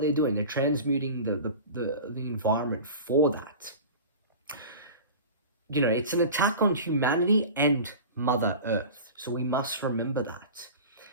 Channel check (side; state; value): both; inverted; correlation -0.35